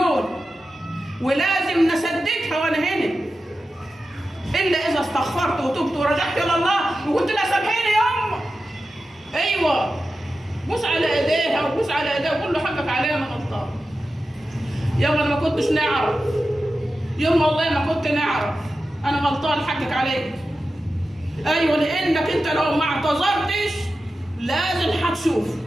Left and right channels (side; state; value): both; normal; correlation 0.92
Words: ولازم نسددها وانا هنا، الا اذا استغفرت وتبت ورجعت الى الله وقلت لها سامحيني يما. ايوه، بوس على ايديها وبوس على ايديها وقول له حقك عليا انا غلطان. يما انا ما كنتش نعرف، يما والله ما كنت نعرف، انا غلطان حقك عليك. ايوه، لانك انت لو ما اعتذرتش لازم هتشوف،